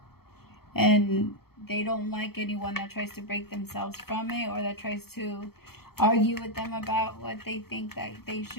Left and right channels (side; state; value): right; late; 0.95 ms